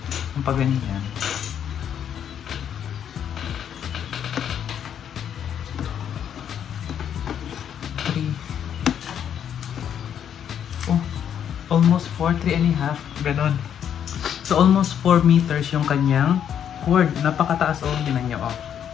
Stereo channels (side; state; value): right; quieter; 9.0 dB